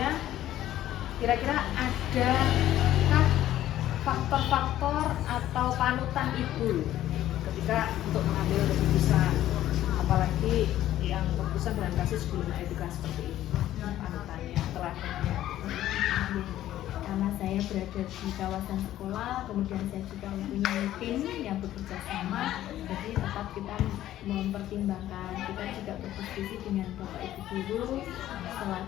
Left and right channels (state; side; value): quieter; right; 13.2 dB